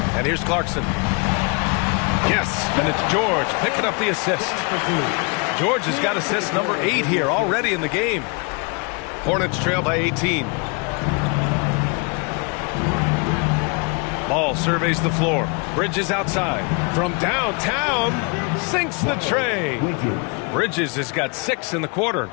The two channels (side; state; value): right; quieter; 32.9 dB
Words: And here's Clarkson. Yes, and it's George picking up the assist. George has got assist number 8 here already in the game. Hornets trail by 18. Ball surveys the floor. Bridges outside. From downtown, sinks the tray. Bridges has got 6 in the quarter.